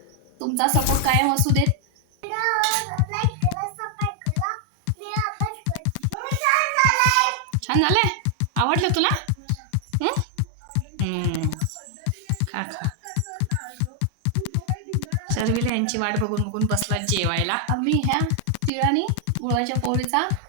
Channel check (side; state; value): both; different; correlation 0.00